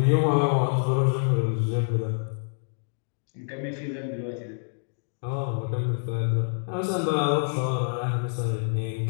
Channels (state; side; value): silent; right; digital silence